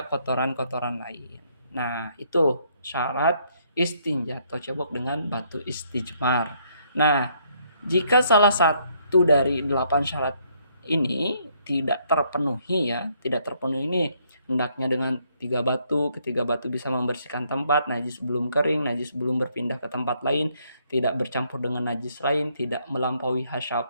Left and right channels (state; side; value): inverted; both; correlation -0.70